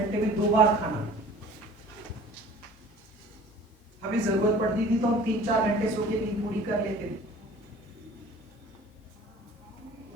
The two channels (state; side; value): normal; both; correlation 0.46